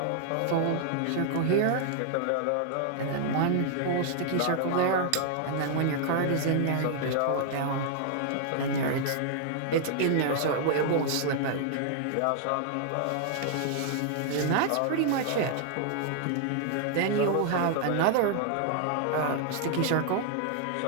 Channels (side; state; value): both; different; correlation 0.00